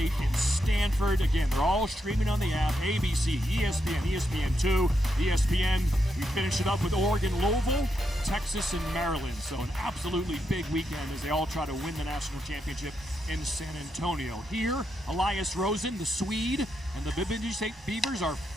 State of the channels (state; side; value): normal; both; correlation 0.82